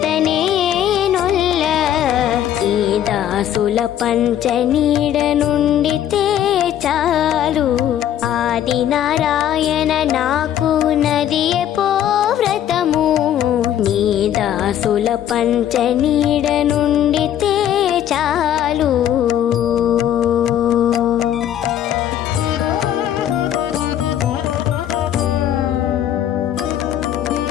నొల్ల ఈ దాసుల పంచనీడ నుండితే చాలు ఆది నారాయణ నాకు నదియే పో వ్రతము నీ దాసుల పంచనీడ నుండితే చాలు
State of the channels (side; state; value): right; quieter; 10.9 dB